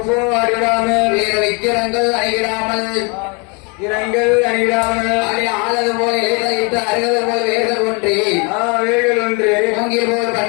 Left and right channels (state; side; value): quieter; right; 32.1 dB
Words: அடிடாமல் வேறு விக்கிரங்கள் அணிகிடாமல் இரங்கள் அணிடாமல் ஆளது போல இலைதளித்து அருகது போல் வேர்கள் ஒன்றி வேர்கள் ஒன்று மூங்கில் போல்